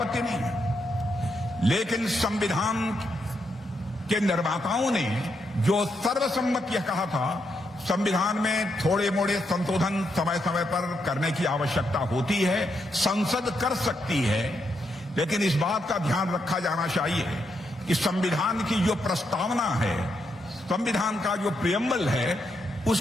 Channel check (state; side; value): normal; both; correlation 0.80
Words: नहीं है, लेकिन संविधान के निर्माताओं ने जो सर्वसम्मत यह कहा था, संविधान में थोड़े मोड़े संशोधन समय समय पर करने की आवश्यकता होती है, संसद कर सकती है, लेकिन इस बात का ध्यान रखा जाना चाहिए कि संविधान की जो प्रस्तावना है, संविधान का जो प्रियम्बल है,